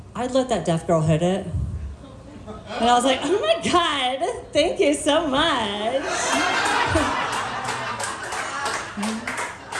I'd let that deaf girl hit it. And I was like, oh my God, thank you so much.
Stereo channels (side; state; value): both; identical; correlation 1.00